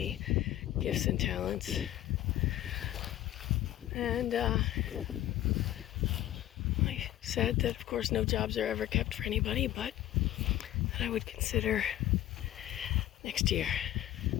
gifts and talents. And I said that, of course, no jobs are ever kept for anybody, but that I would consider next year.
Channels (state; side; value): quieter; right; 13.5 dB